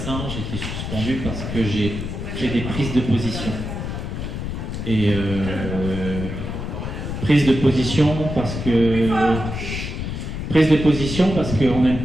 j'ai été suspendu parce que j'ai fait des prises de position. Et prise de position parce qu'on n'aime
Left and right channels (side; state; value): left; noise; rumble, 5 dB below the sound